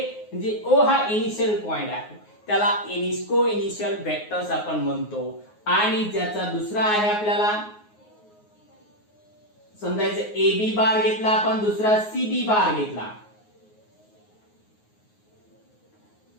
म्हणजे ओ हा इनिशियल पॉइंट आहे, त्याला को इनिशियल वेक्टर्स आपण म्हणतो. आणि ज्याचा दुसरा आहे आपल्याला समजायचं ए बी बार घेतला आपण, दुसरा सी बी बार घेतला.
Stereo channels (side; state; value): right; late; 9.5 ms